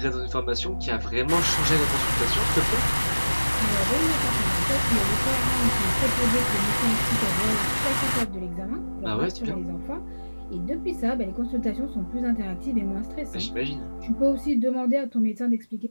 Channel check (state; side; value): inverted; both; correlation -1.00